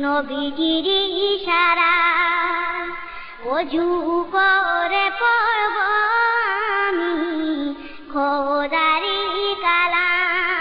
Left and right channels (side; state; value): both; identical; correlation 1.00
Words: নবীজির ইশারা। অজু করে পড়ব আমি খোদারি